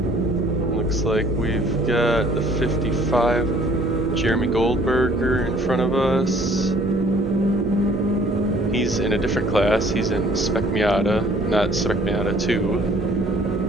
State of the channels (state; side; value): normal; both; correlation 0.56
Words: Looks like we've got the 55 Jeremy Goldberger in front of us. He's in a different class. He's in Spec Miata, not Spec Miata